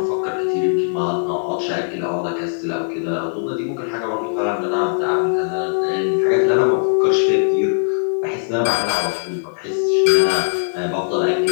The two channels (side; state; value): right; silent; digital silence